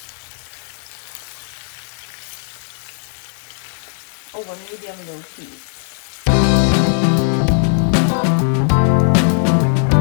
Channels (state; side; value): silent; right; 56 dB below the other